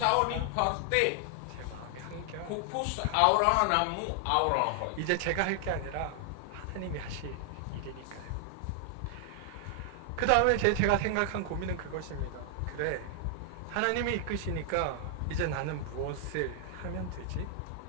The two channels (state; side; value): different; both; correlation 0.00